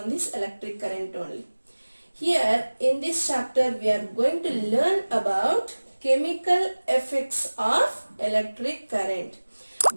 this electric current only. Here in this chapter we are going to learn about chemical effects of electric current.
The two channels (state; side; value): inverted; both; correlation -1.00